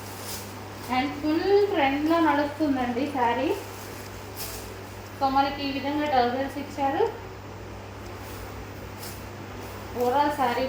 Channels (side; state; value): both; identical; correlation 1.00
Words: అండ్ ఫుల్ ట్రెండ్లో నడుస్తుందండి శారీ. సో మనకి ఈ విధంగా టర్జల్స్ ఇచ్చారు. ఓవరాల్ శారీ